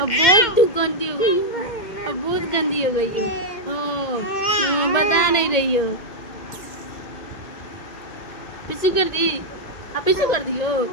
बहुत गंदी हो गई हो, अब बहुत गंदी हो गई हो। बता नहीं रही हो। पिच्चू कर दी, अब पिच्चू कर दियो,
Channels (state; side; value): late; right; 1.9 ms